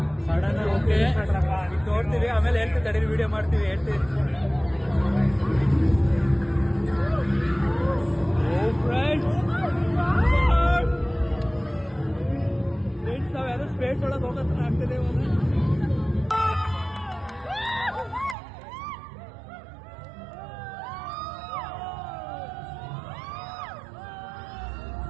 ಸಡನ್ ಓಕೆ ನೋಡ್ತೀವಿ, ಆಮೇಲೆ ಹೇಳ್ತೀವಿ, ತಡೀರಿ ವಿಡಿಯೋ ಮಾಡ್ತೀವಿ, ಹೇಳ್ತೀವಿ. ಫ್ರೆಂಡ್ಸ್ ನಾವು ಯಾರು ಸ್ಪೇಸ್ ಒಳಗೆ ಹೋಗೋತ್ರ ಆಗ್ತದೆ.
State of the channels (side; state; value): left; drops out; at 18.4 s